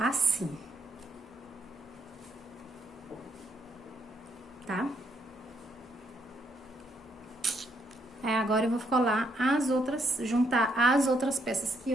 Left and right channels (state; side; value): normal; both; correlation 0.74